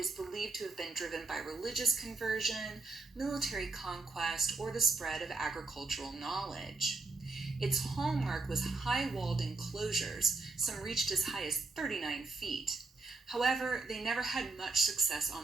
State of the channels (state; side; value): quieter; left; 3.6 dB